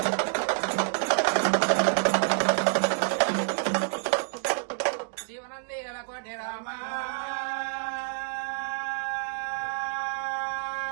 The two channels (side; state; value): left; silent; digital silence